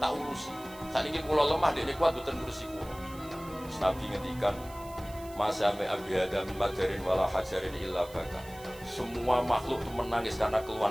urusi. Saiki kula lemah dekne kuat mboten ngurusi kula. Nabi ngendikan Masame abi adam madarin wala hajarin illa baka. Semua makhluk itu menangis karena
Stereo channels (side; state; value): right; noise; hiss, 20 dB below the sound